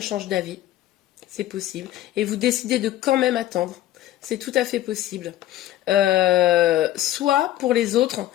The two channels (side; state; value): right; quieter; 14.0 dB